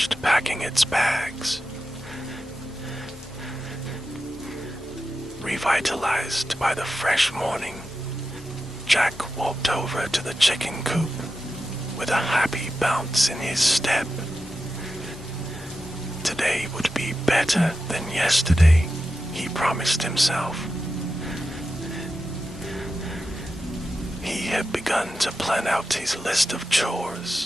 packing its bags. Revitalized by the fresh morning, Jack walked over to the chicken coop with a happy bounce in his step. Today would be better than yesterday, he promised himself. He had begun to plan out his list of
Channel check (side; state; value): both; normal; correlation 0.91